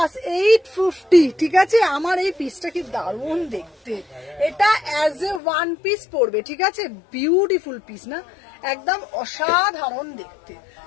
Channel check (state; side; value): drops out; right; at 5.4 s